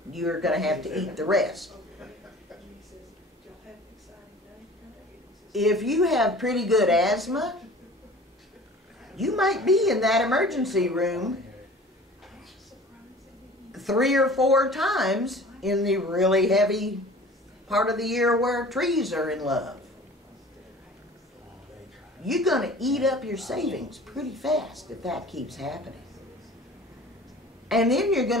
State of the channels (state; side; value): normal; both; correlation 0.44